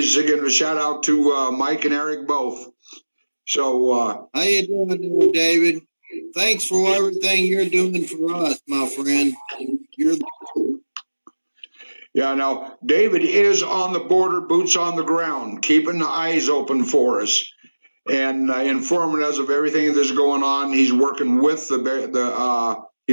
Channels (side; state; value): both; inverted; correlation -1.00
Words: giving a shout out to Mike and Eric both. So, how you doing, David? Thanks for everything you're doing for us, my friend. Yeah, now, David is on the border, boots on the ground, keeping the eyes open for us and informing us of everything that's going on. He's working with Border